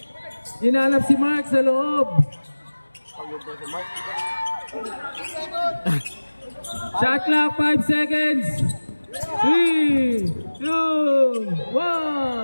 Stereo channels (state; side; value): inverted; both; correlation -1.00